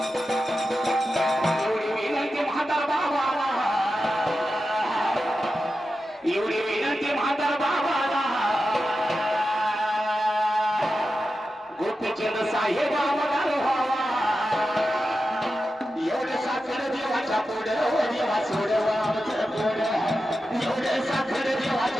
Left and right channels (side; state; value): both; normal; correlation 0.91